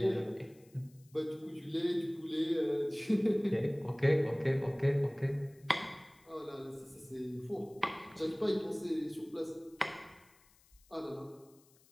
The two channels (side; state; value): left; noise; hiss, 30 dB below the sound